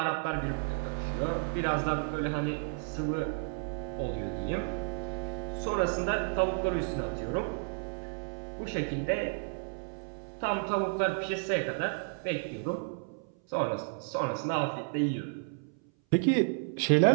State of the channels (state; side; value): silent; left; 56 dB below the other